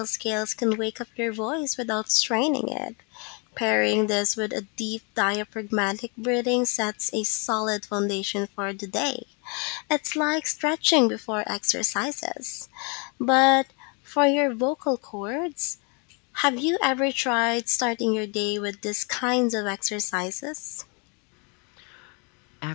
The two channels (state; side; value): quieter; right; 34.0 dB